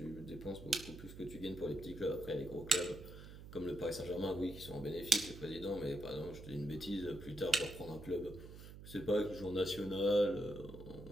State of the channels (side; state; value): right; noise; hum, 14 dB below the sound